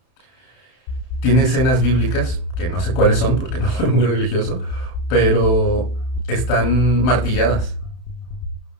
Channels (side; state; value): right; late; 31 ms